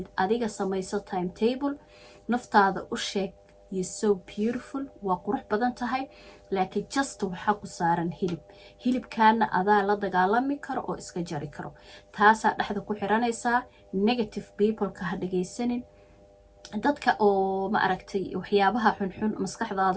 adiga samayso timetable, naftaada u sheeg you so beautiful, waa qurux badan tahay, laakiin just waxaa ku saaran hilibkaana adaa la dagaalami karo oo iska jari karo. taasaa dhexda ku xiranaysaa. negative peopleka ha dhagaysanin, dadka oo ma aragtay waxyaabaha xunxun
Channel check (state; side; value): identical; both; correlation 1.00